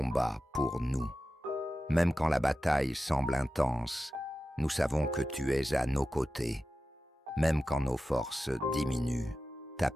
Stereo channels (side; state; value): both; normal; correlation 0.93